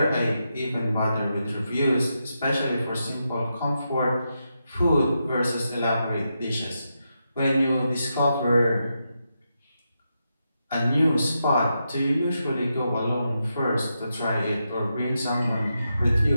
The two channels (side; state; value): both; inverted; correlation -0.85